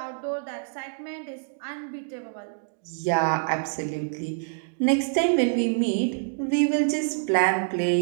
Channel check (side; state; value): left; silent; digital silence